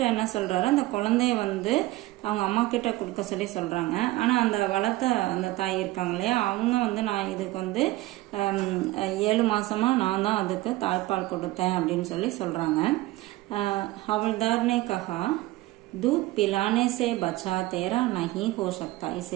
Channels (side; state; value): left; quieter; 18.5 dB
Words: என்ன சொல்றாரு, அந்த குழந்தைய வந்து அவங்க அம்மா கிட்ட கொடுக்க சொல்லி சொல்றாங்க, ஆனா அந்த வளர்த்த அந்த தாய் இருக்காங்க இல்லையா, அவங்க வந்து நான் இதுக்கு வந்து 7 மாசமா நான் தான் அதுக்கு தாய்ப்பால் கொடுத்தேன் அப்படின்னு சொல்லி சொல்றாங்க। ஹவல்தார் ने कहा दूध पिलाने से बच्चा तेरा नहीं हो सकता,